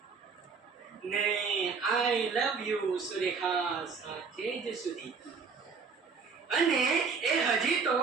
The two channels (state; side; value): quieter; left; 5.3 dB